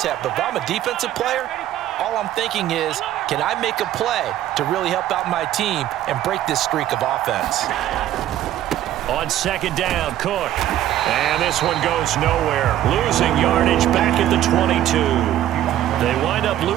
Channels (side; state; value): left; quieter; 12.6 dB